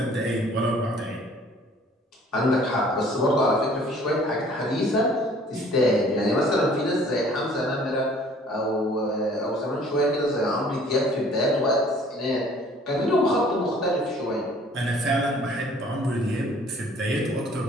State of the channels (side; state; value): both; normal; correlation 0.54